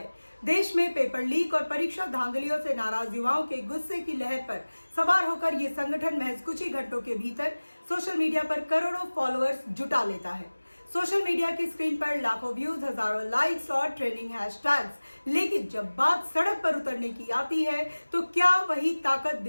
देश में पेपर लीक और परीक्षा धांधलियों से नाराज युवाओं के गुस्से की लहर पर सवार होकर ये संगठन महज कुछ ही घंटों के भीतर सोशल मीडिया पर करोड़ों फॉलोअर्स जुटा लेता है। सोशल मीडिया की स्क्रीन पर लाखों व्यूज, हजारों लाइक्स और ट्रेंडिंग हैशटैग्स, लेकिन जब बात सड़क पर उतरने की आती है तो क्या वही ताकत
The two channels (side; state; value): both; inverted; correlation -1.00